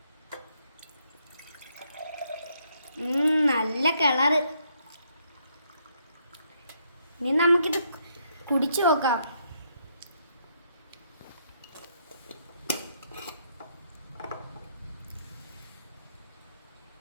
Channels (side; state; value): both; inverted; correlation -0.74